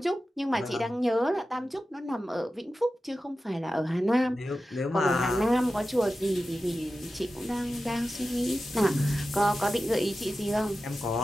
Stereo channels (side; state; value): both; normal; correlation 0.93